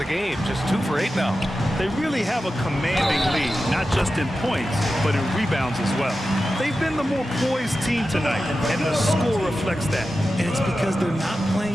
game, just 2 for 8 now. They really have a commanding lead, not just in points, but in rebounds as well. They've been the more poised team tonight, and the score reflects that. And it's because they're not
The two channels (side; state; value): both; normal; correlation 0.92